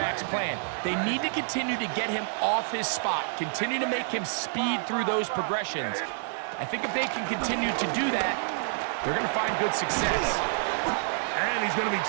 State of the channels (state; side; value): silent; left; 59 dB below the other